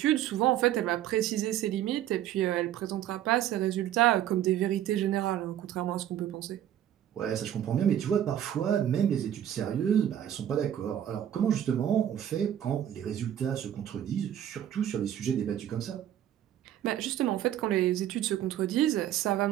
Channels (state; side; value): quieter; left; 11.1 dB